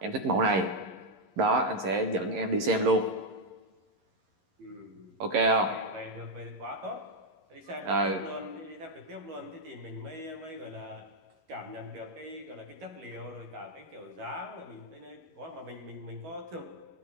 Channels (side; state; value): left; late; 11 ms